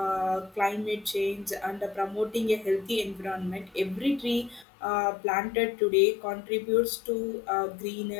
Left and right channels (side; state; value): right; drops out; at 4.7 s